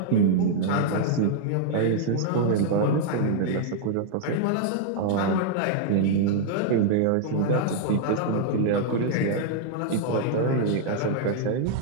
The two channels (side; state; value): both; different; correlation -0.01